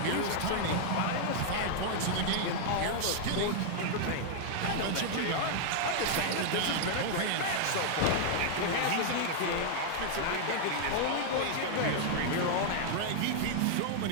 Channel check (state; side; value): different; both; correlation -0.01